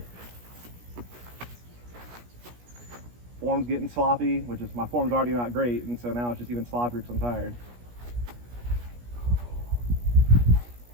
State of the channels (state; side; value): late; left; 17 ms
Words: Form's getting sloppy, which is, my form's already not great, and so now it's just even sloppier because I'm tired.